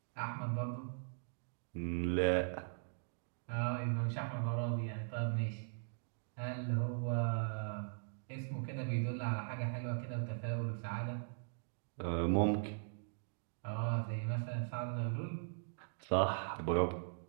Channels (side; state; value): left; silent; digital silence